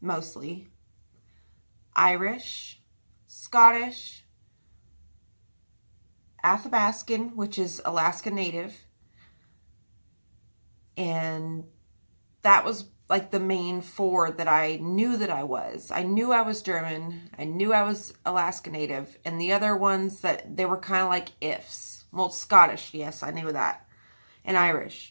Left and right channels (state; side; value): inverted; both; correlation -1.00